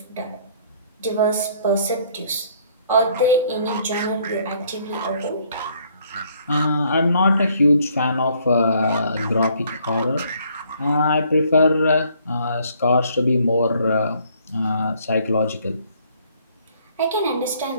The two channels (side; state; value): both; inverted; correlation -0.64